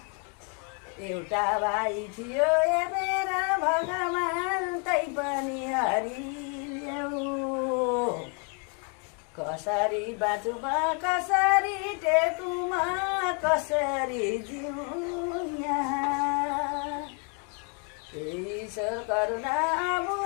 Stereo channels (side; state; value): right; quieter; 37.9 dB